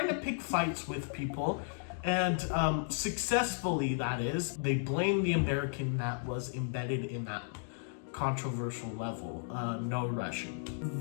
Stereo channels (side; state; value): right; silent; digital silence